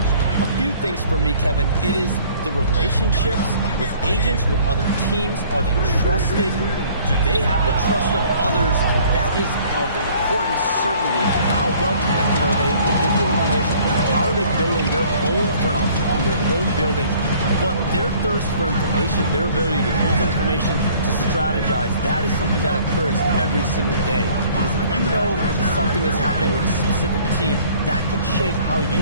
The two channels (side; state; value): both; inverted; correlation -0.54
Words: A few things for me, Kevin. It is the relationships with agents, with other teams? Are they trusted? Do they have the trust of others? That is of importance, certainly. How well connected are they within the organization? How are they building their own front office in their own buildings? But their thirst for information, their ability to use information to strategize, that is something that occurs every single day. Because if you know something is happening with a specific team, that could shape how you